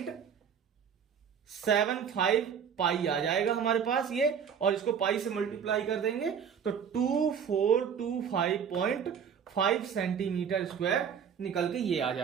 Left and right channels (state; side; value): quieter; left; 7.5 dB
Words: पाई आ जाएगा हमारे पास ये, और इसको पाई से मल्टीप्लाई कर देंगे तो 2425.5 सेंटीमीटर स्क्वायर निकल के ये आ